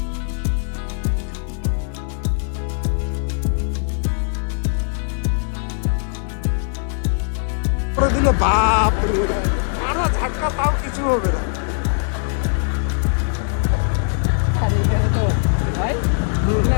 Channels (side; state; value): right; silent; digital silence